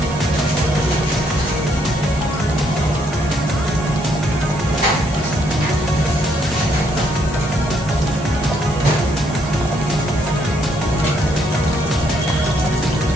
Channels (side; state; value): both; normal; correlation 0.72